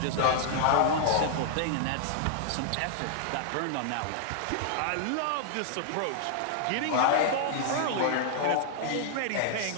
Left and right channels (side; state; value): both; different; correlation -0.01